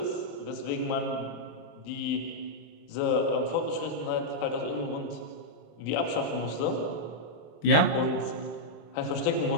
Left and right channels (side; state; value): right; late; 26 ms